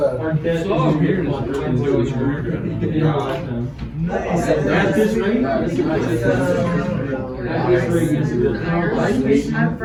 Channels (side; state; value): both; identical; correlation 1.00